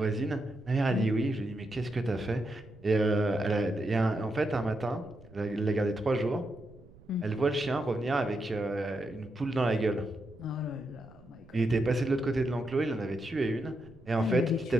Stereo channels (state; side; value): noise; right; rumble, 24 dB below the sound